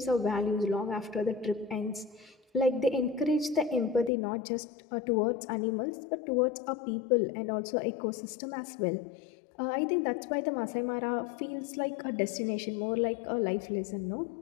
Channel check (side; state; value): right; drops out; at 4.1 s